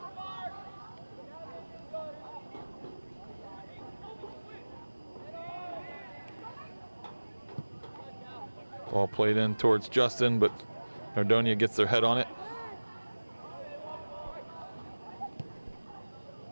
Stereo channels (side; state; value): both; inverted; correlation -1.00